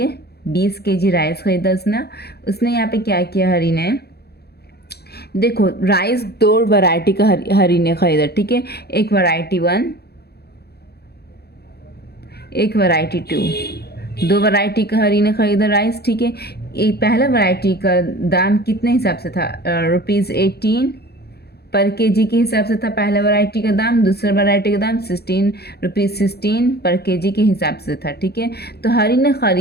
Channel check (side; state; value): right; late; 0.47 ms